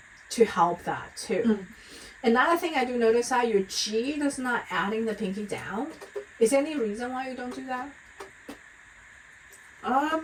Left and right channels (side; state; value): both; identical; correlation 1.00